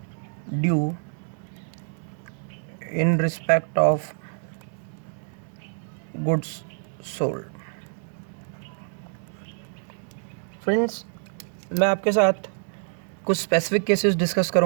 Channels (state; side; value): silent; left; 61 dB below the other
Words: due in respect of goods sold. Friends, मैं आपके साथ कुछ स्पेसिफिक केसेस डिस्कस